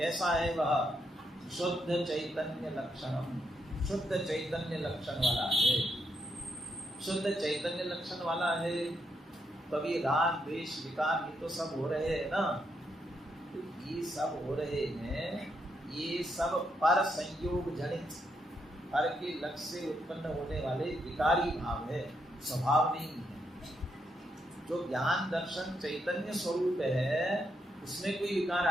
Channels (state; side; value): normal; both; correlation 0.80